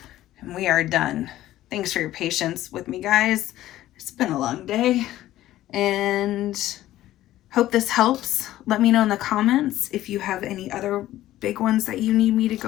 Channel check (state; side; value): quieter; right; 14.3 dB